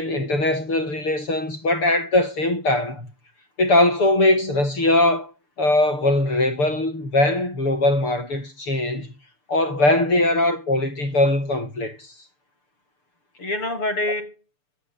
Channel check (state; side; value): late; right; 6.8 ms